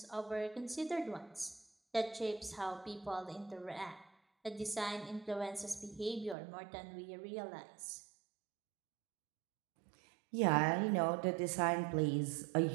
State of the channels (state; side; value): drops out; left; at 6.4 s